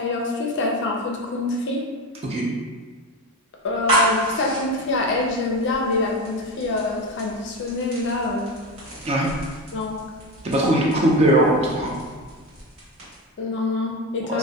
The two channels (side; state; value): both; normal; correlation 0.20